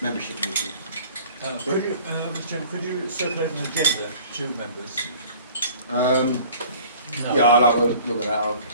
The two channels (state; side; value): inverted; both; correlation -0.48